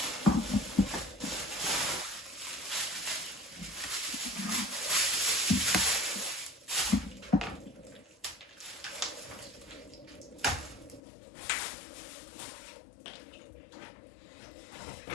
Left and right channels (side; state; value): right; drops out; at 11.0 s